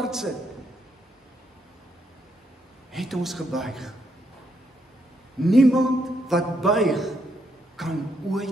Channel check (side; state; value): both; normal; correlation 0.77